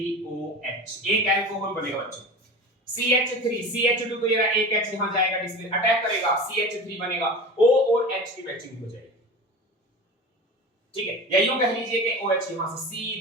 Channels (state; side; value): normal; both; correlation 0.31